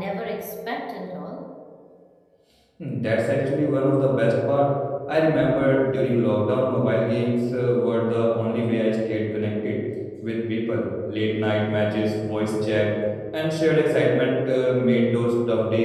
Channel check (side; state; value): both; identical; correlation 1.00